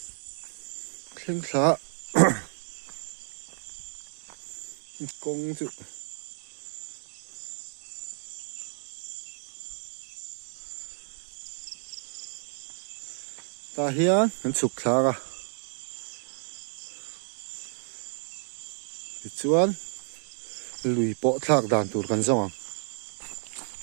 khen khá công dụng ta hiền hắn sụp khá à chuan lùi bộ thạc đàn tụt gần rong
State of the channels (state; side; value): silent; left; digital silence